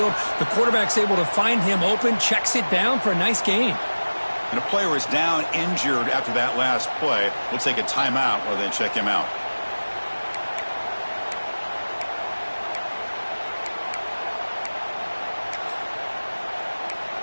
The quarterback's able to find him open, checks it down for a nice gain. And a player is down injured after that last play. We'll take a timeout while they check him out.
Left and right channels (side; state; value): both; inverted; correlation -1.00